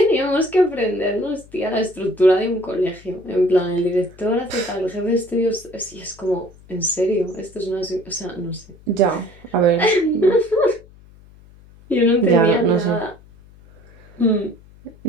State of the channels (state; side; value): noise; left; hum, 24 dB below the sound